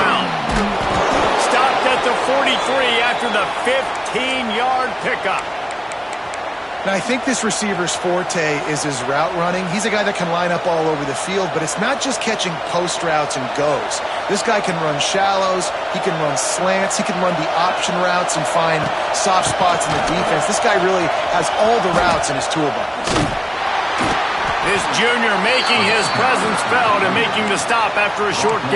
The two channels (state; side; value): identical; both; correlation 1.00